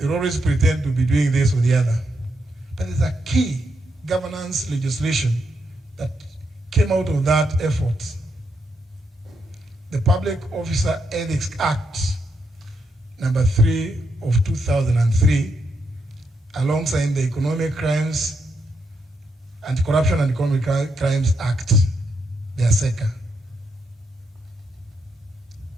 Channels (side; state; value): both; normal; correlation 0.81